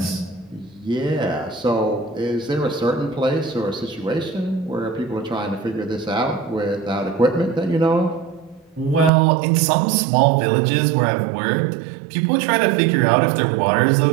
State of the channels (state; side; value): drops out; left; at 9.1 s